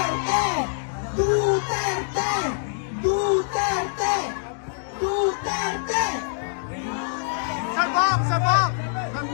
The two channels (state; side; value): silent; right; digital silence